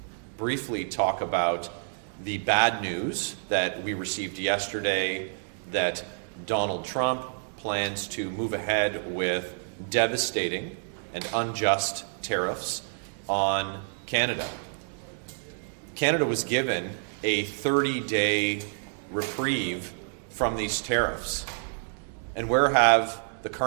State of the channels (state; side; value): silent; left; 59 dB below the other